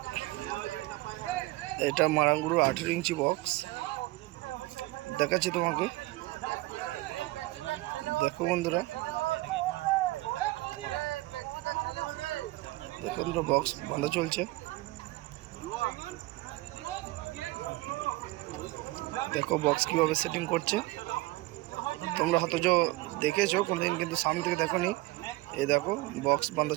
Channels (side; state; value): left; quieter; 20.0 dB